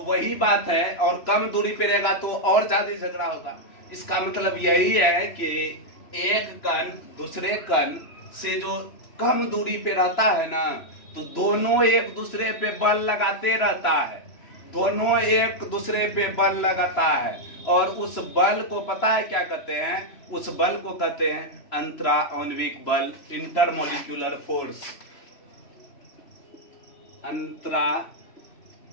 वही बात है, और कम दूरी पे रहेगा तो और ज्यादा झगड़ा होगा। इसका मतलब यही है कि एक कण दूसरे कण से जो कम दूरी पे रहता है ना, तो दोनों एक दूसरे पे बल लगाते रहता है, दोनों एक दूसरे पे बल लगाता है, और उस बल को पता है क्या कहते हैं? उस बल को कहते हैं अंतराआण्विक बल, इंटरमोलिक्यूलर फोर्स। अंतराआण्विक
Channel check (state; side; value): late; right; 3.0 ms